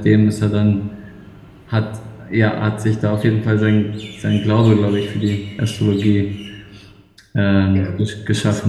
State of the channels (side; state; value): both; identical; correlation 1.00